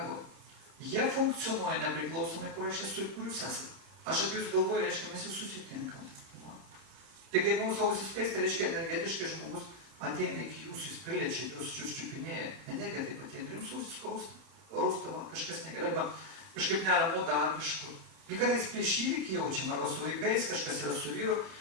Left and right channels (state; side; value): late; left; 30 ms